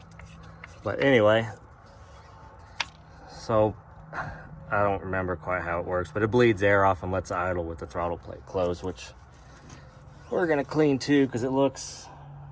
But anyway, so I don't remember quite how it works, but it bleeds air off and lets it idle with the throttle plate closed, which we're gonna clean too because it looks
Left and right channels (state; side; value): identical; both; correlation 1.00